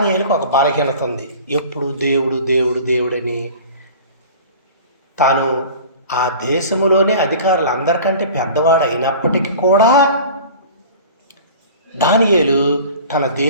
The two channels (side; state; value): both; inverted; correlation -0.41